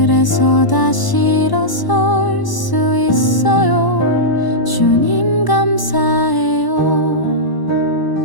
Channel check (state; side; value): late; right; 1.0 ms